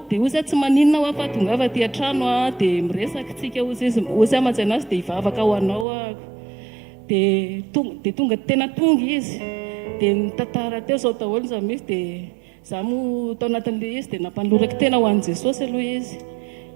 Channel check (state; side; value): drops out; left; at 5.9 s